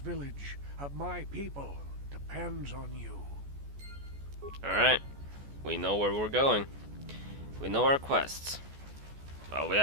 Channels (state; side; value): late; left; 14 ms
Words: of my people, depends on you. Alright. We know where we're going. We know our quests. Well, we